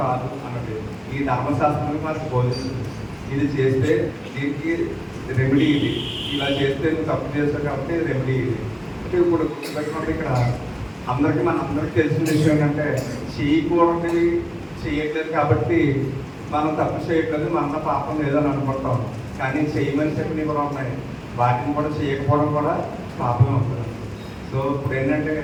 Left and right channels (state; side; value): identical; both; correlation 1.00